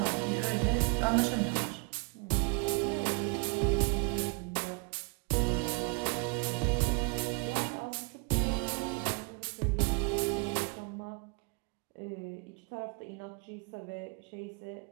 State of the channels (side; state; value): left; quieter; 31.0 dB